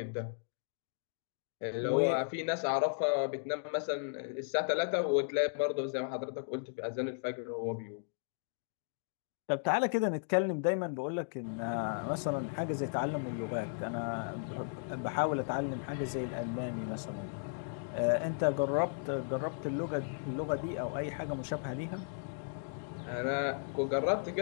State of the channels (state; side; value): silent; right; digital silence